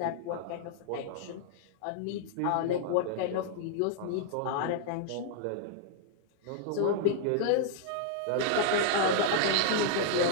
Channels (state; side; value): different; both; correlation -0.01